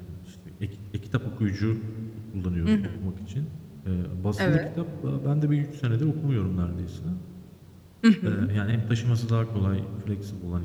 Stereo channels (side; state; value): both; identical; correlation 1.00